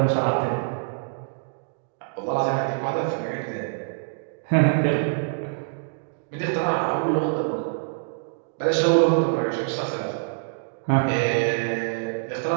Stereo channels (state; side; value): silent; left; digital silence